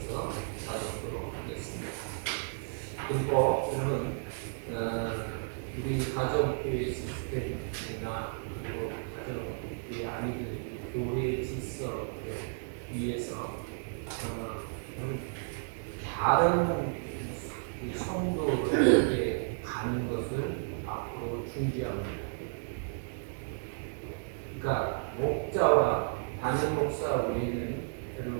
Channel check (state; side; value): silent; left; digital silence